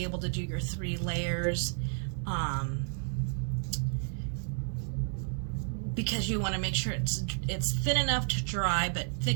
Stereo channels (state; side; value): silent; left; 57 dB below the other